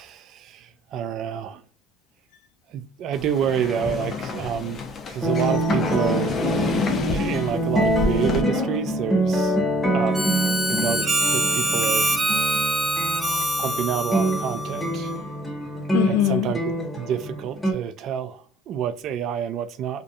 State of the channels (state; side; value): normal; both; correlation 0.59